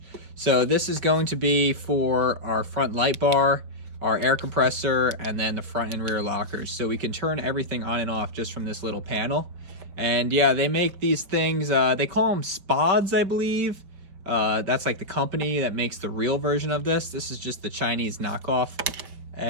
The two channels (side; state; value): left; late; 5.3 ms